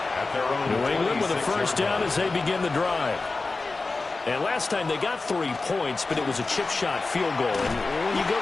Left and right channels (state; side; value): quieter; right; 3.7 dB